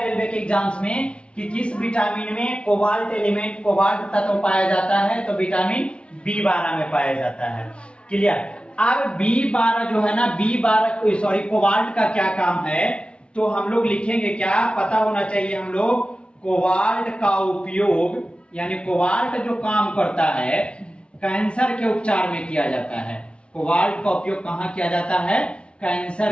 रेलवे के एग्जाम्स में कि किस विटामिन में कोबाल्ट एलिमेंट, कोबाल्ट तत्व पाया जाता है, तो विटामिन B12 में पाया जाता है। क्लियर? अब B12 जो है ना, B12 सॉरी कोबाल्ट का क्या काम है, तो हम लोग लिखेंगे क्या, पता होना चाहिए हम लोग। कोबाल्ट का उपयोग, यानी कोबाल्ट जो काम करता है कैंसर के उपचार में किया जाता है। कोबाल्ट का उपयोग कहां किया जाता है?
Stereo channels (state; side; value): late; right; 0.058 ms